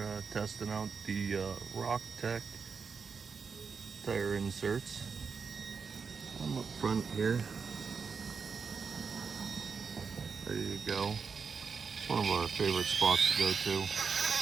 testing out the Rock-tek tire inserts. I'm up front here, ready to go. It's one of our favorite spots to go to.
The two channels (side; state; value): left; quieter; 5.6 dB